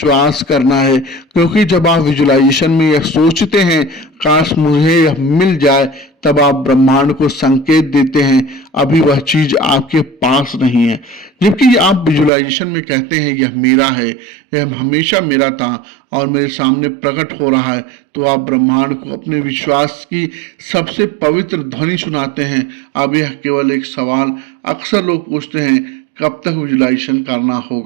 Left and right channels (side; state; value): left; drops out; at 12.3 s